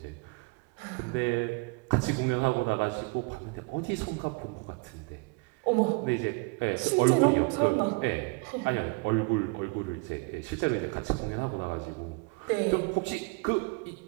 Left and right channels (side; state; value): left; quieter; 28.6 dB